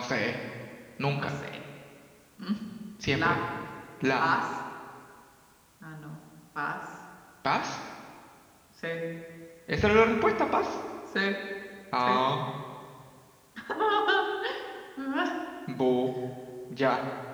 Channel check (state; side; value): identical; both; correlation 1.00